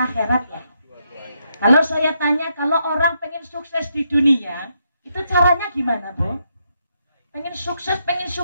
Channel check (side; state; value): both; inverted; correlation -0.79